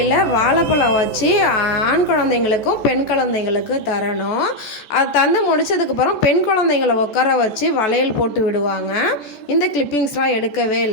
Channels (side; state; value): right; late; 14 ms